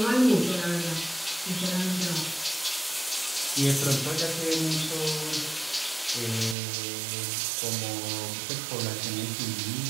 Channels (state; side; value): drops out; left; at 6.6 s